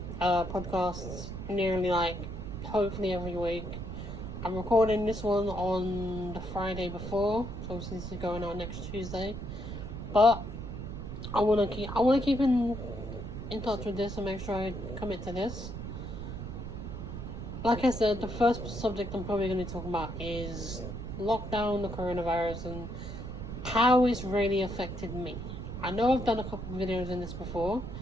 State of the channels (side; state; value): right; noise; rumble, 7 dB below the sound